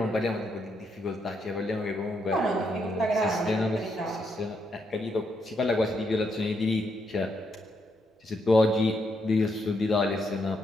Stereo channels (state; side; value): normal; both; correlation 0.78